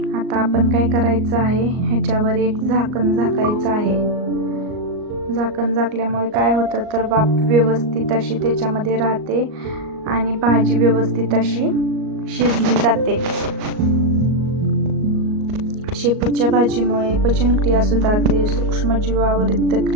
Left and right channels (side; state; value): left; late; 38 ms